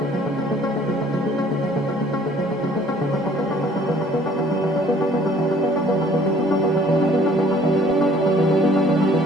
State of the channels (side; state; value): both; normal; correlation 0.57